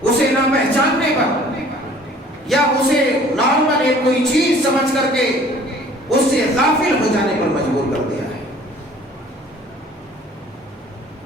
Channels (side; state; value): both; normal; correlation 0.52